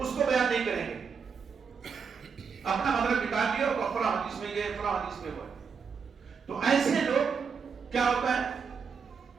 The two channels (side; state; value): left; quieter; 6.0 dB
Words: کو بیان نہیں کریں گے. اپنا مطلب نکال دیا اور فلاں حدیث میں یہ فلاں حدیث میں وہ. تو ایسے لوگ کیا ہوتا ہے،